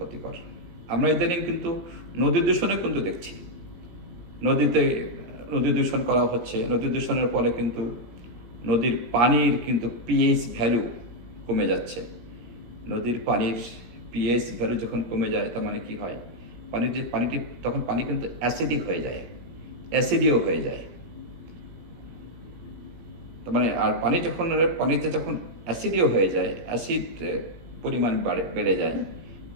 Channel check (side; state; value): left; late; 17 ms